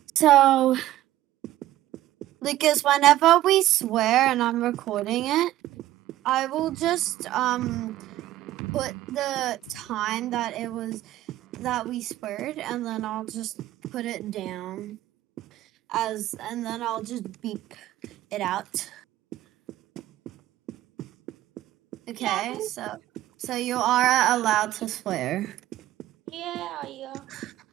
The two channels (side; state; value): left; quieter; 14.5 dB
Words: So, because whenever we swear and I'm recording it, I will just put the time that we sweared, and then I'll just put it down and then I'll just beep it out. Okay, Yeah. so you are allowed to swear. Yeah.